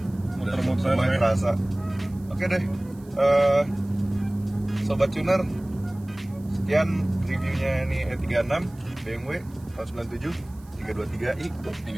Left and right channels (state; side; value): noise; right; hiss, 28 dB below the sound